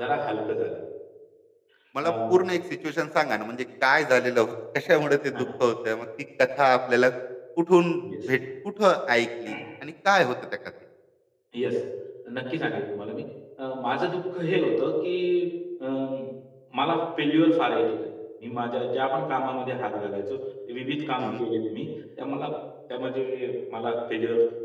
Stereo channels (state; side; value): identical; both; correlation 1.00